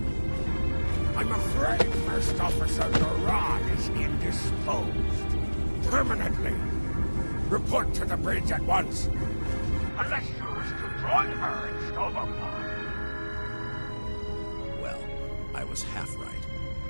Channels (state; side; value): inverted; both; correlation -1.00